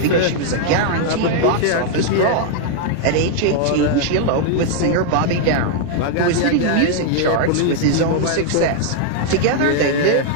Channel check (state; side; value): different; both; correlation 0.00